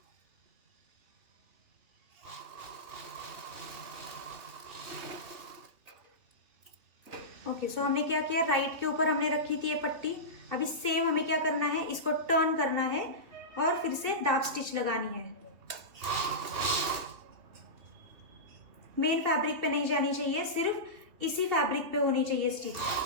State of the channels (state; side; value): late; left; 3.0 ms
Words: ओके, सो हमने क्या किया, राइट के ऊपर हमने रखी थी ये पट्टी। अभी सेम हमें क्या करना है, इसको टर्न करना है और फिर से दाब स्टिच लगानी है। मेन फैब्रिक पे नहीं जानी चाहिए, सिर्फ इसी फैब्रिक पे होनी चाहिए स्टिच।